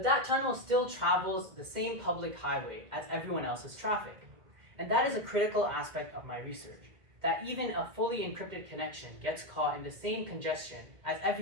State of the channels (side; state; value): left; late; 2.1 ms